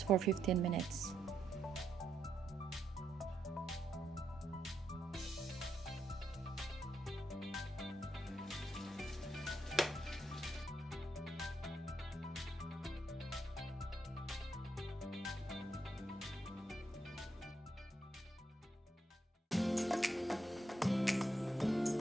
for 15 minutes.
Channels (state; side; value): normal; both; correlation 0.79